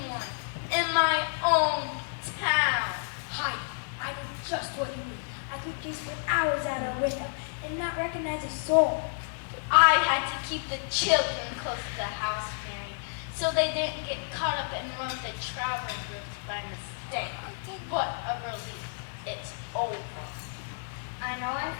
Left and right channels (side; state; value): right; silent; digital silence